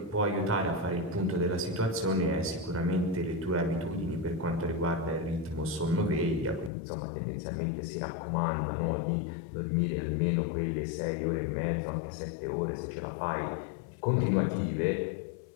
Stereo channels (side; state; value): right; drops out; at 6.7 s